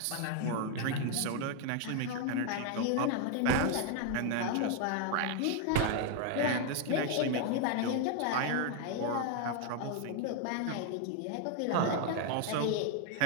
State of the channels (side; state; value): both; different; correlation 0.01